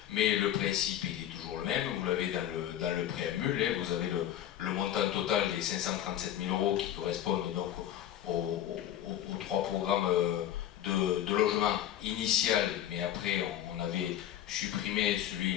mais le principe il est toujours le même, vous l'avez dans le préambule, hein, vous avez le montant total des 537 000 € qui correspondent donc aux 3 programmes de logement initial, mais après on avait supprimé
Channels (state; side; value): quieter; right; 11.5 dB